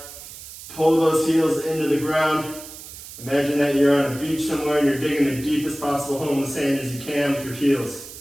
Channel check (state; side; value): noise; right; hiss, 14 dB below the sound